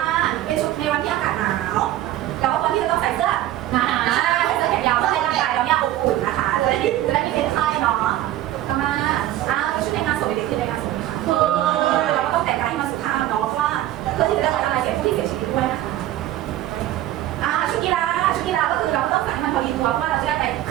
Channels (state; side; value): quieter; left; 14.0 dB